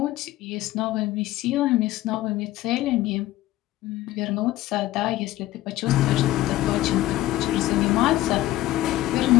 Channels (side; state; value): right; quieter; 15.7 dB